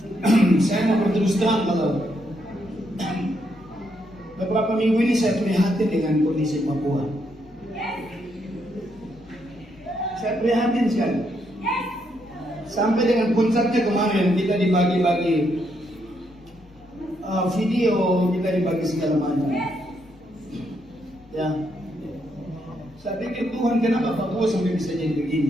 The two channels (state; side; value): normal; both; correlation 0.77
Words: saya mau berterus terang kalau beberapa minggu ini saya prihatin dengan kondisi Papua. Saya prihatin sekali. Sampai dengan puncaknya kemarin kita dibagi-bagi video, kita dibagi segala macam. Ya, saya pikir Tuhan, kenapa Papua sampai bisa jadi